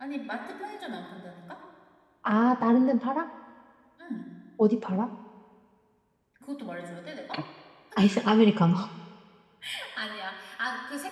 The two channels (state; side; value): identical; both; correlation 1.00